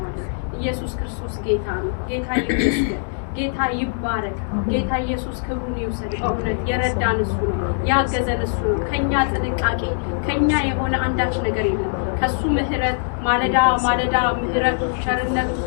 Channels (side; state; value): right; silent; 64 dB below the other